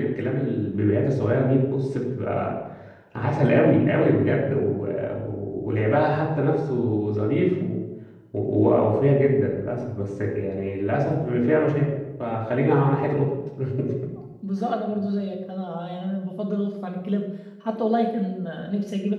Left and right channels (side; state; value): both; identical; correlation 1.00